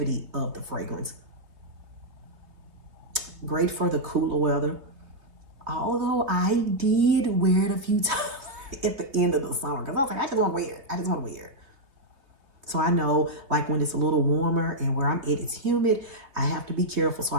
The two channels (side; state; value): left; late; 3.2 ms